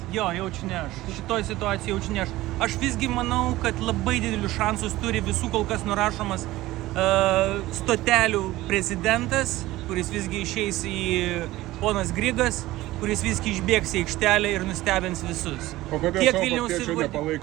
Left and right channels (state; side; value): quieter; left; 17.3 dB